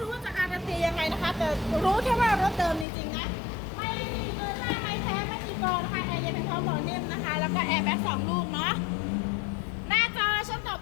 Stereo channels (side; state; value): right; drops out; at 2.9 s